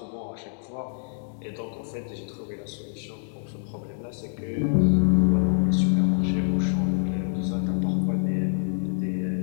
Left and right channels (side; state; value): right; silent; 61 dB below the other